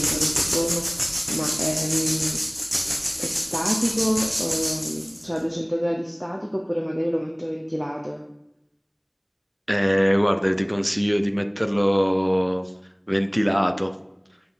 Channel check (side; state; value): both; identical; correlation 1.00